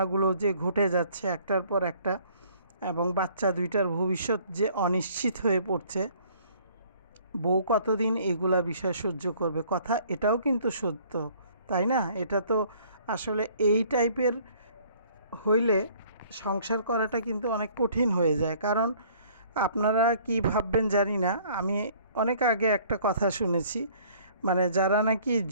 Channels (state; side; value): inverted; both; correlation -0.57